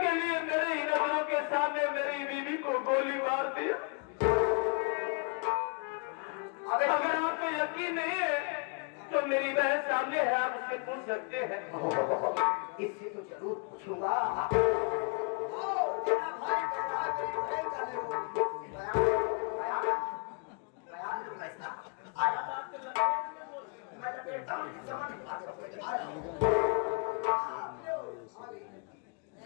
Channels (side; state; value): right; quieter; 38.5 dB